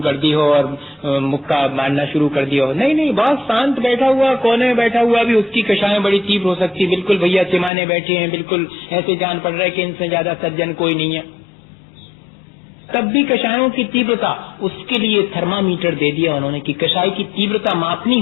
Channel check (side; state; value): right; drops out; at 7.7 s